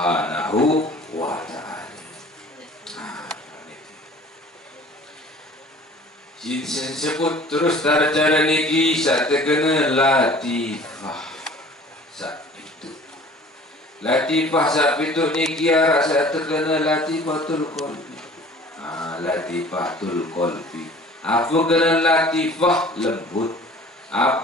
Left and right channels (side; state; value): both; normal; correlation 0.47